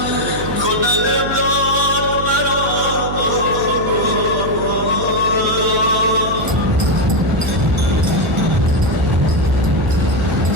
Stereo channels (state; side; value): noise; right; hum, 6 dB below the sound